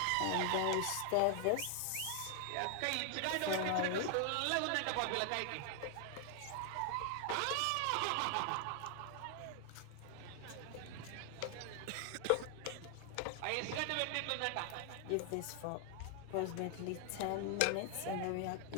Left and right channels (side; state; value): both; different; correlation 0.00